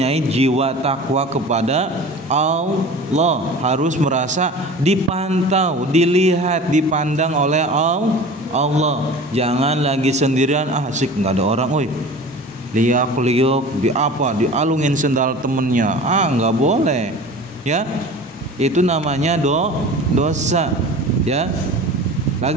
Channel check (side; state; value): both; normal; correlation 0.38